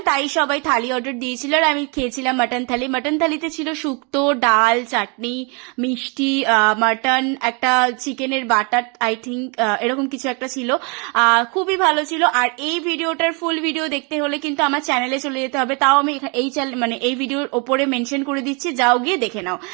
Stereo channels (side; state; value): left; quieter; 33.0 dB